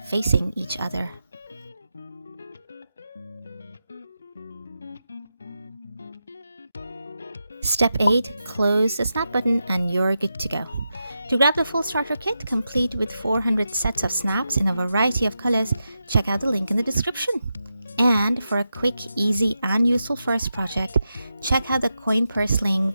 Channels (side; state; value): both; inverted; correlation -0.88